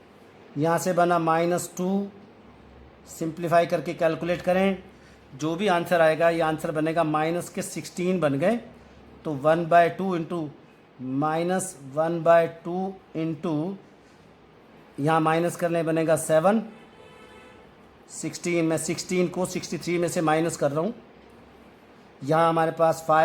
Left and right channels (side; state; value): both; identical; correlation 1.00